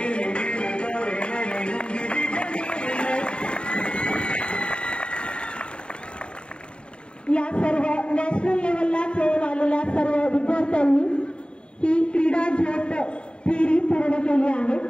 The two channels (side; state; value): right; late; 0.054 ms